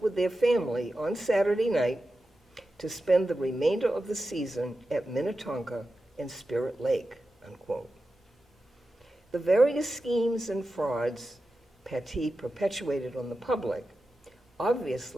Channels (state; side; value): normal; both; correlation 0.92